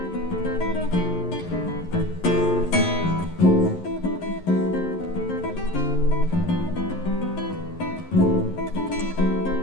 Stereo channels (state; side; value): late; right; 11 ms